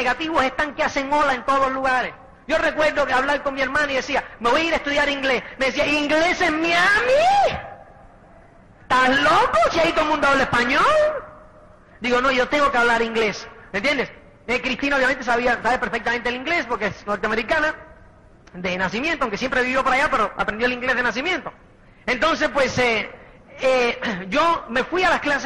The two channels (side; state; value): both; identical; correlation 1.00